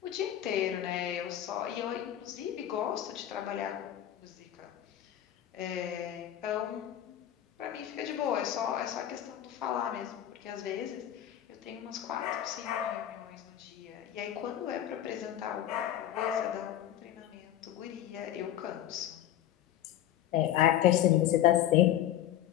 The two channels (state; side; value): quieter; right; 11.9 dB